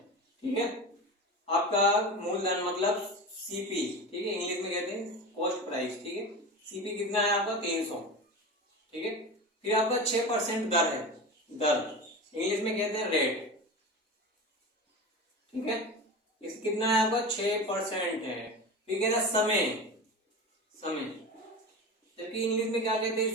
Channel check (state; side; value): normal; both; correlation 0.27